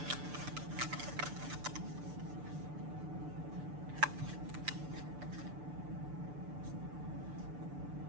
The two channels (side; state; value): left; late; 6.8 ms